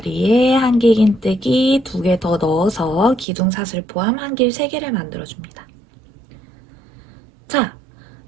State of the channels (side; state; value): left; drops out; at 3.2 s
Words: 한길긴뜨기 2개 더 넣어서 기둥사슬 포함 한길 3개를 만들어줍니다. 자,